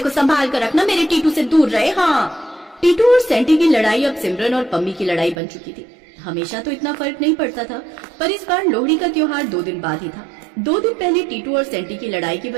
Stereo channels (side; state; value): left; drops out; at 5.4 s